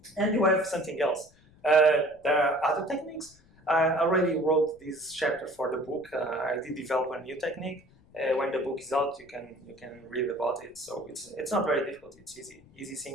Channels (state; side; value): noise; left; rumble, 29 dB below the sound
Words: And you have something else. There are other techniques. I already wrote this chapter for the book. I did develop a new technique. When the book is out, you can read about it. So it's not very difficult. It's easy. Easy